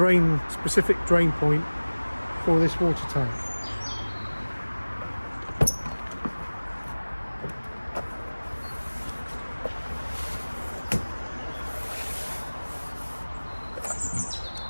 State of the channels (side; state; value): both; inverted; correlation -1.00